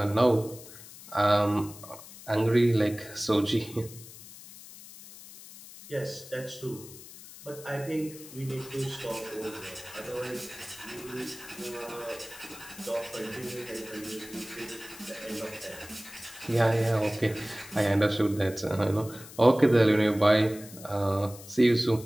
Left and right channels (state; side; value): noise; left; hiss, 17 dB below the sound